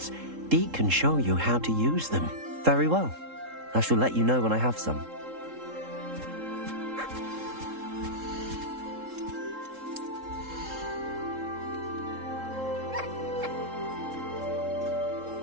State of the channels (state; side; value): late; left; 3.7 ms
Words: Deke can show you how to use them. Very well. I shall let you know when I have some.